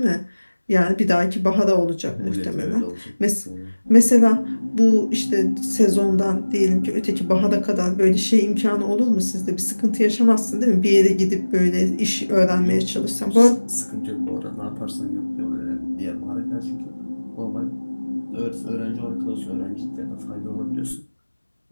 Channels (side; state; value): both; inverted; correlation -1.00